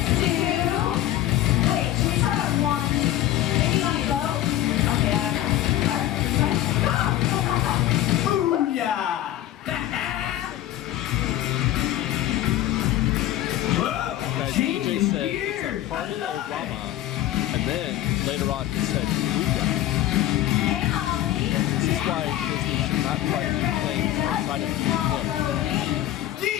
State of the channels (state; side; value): quieter; right; 13.6 dB